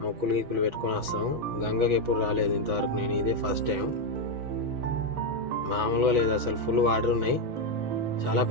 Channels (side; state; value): left; late; 6.0 ms